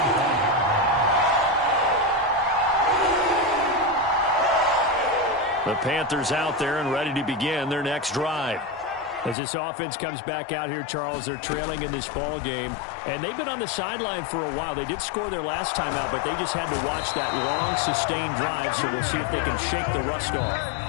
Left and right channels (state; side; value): drops out; right; at 9.3 s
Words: The Panthers out there and ready to begin their next drive. As this offense comes back out here, Charles, they're trailing in this ball game, and they've been on the sideline for a while. They did score their last time out, but they just had to watch that long, sustained drive, so we'll see if they can shake the rust off.